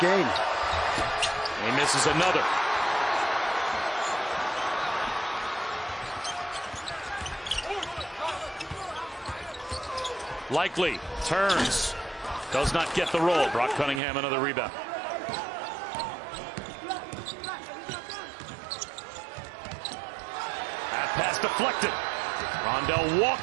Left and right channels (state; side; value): drops out; left; at 14.0 s